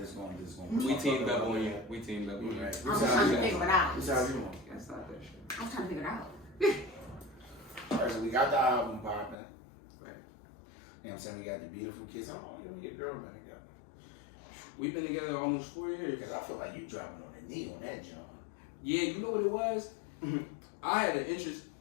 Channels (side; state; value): right; drops out; at 9.3 s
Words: gonna We teamed up on you. We teamed up on you. Right. I'm just trying to figure it out. What's how you doing? That's not that shit. I'm trying to figure it out. Alright, so we got the album popping. Right. You know what I'm saying? We got the beautiful kids. How long you and your girl been together? We've been together almost 4 years. Because I feel like you dropping on the knee on that jump. Yeah, you know what it was? I had an interest.